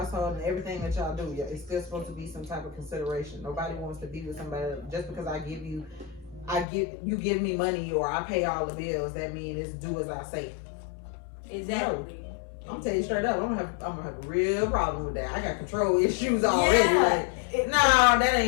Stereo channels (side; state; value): right; drops out; at 6.7 s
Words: and everything that y'all do. It's still supposed to be some type of consideration. Nobody wants to be with somebody just because you give me money or I pay all the bills. That means it's do as I say. Exactly. No. I'm telling you straight up, I'm gonna have a real problem with that. I got control issues already. No, that